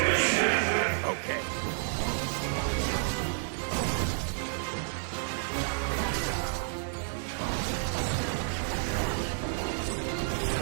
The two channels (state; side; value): silent; left; digital silence